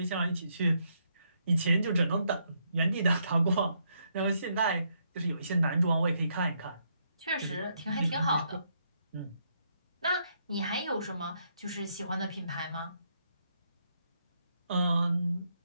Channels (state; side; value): inverted; both; correlation -0.76